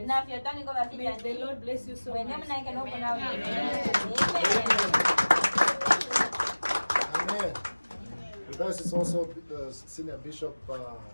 May the Lord bless you so much. Amen. With us is also Senior Bishop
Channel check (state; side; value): inverted; both; correlation -1.00